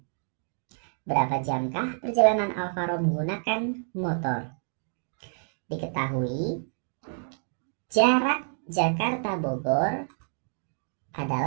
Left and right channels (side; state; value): left; silent; 59 dB below the other